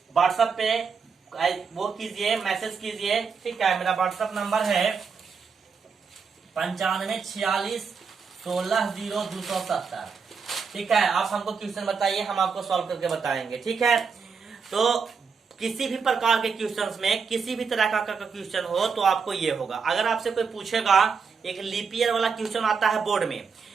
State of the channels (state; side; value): quieter; left; 5.6 dB